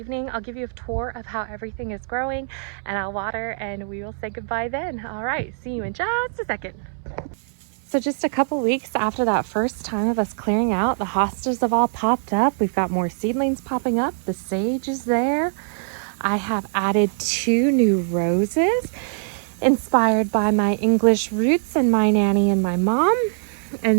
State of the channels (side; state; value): left; silent; 64 dB below the other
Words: I'll give you a tour of how everything is growing, and I'll water, and we will say goodbye then. All right, see you in just a second. So just a couple weeks after that first time of us clearing out, the hostas have all popped up. We've got more seedlings popping up. The sage is there. I have added 2 new roses, inspired by my English roots and my nanny and my mom.